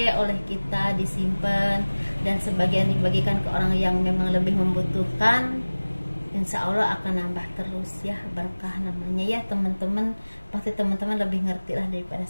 oleh kita, disimpan, dan sebagian dibagikan ke orang yang memang lebih membutuhkan, insya Allah akan nambah terus ya, berkah namanya ya teman-teman. Pasti teman-teman lebih ngerti lah daripada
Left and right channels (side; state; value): both; inverted; correlation -1.00